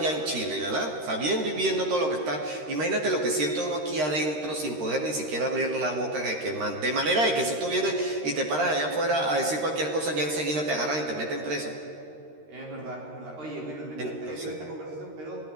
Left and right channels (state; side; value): late; left; 13 ms